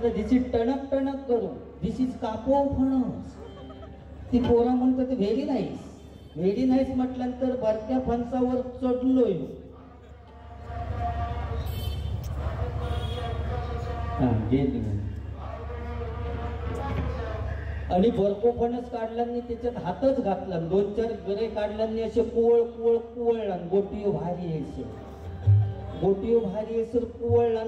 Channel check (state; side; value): identical; both; correlation 1.00